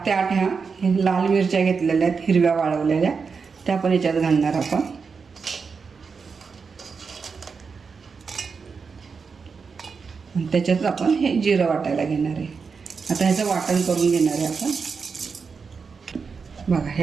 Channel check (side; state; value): left; quieter; 5.3 dB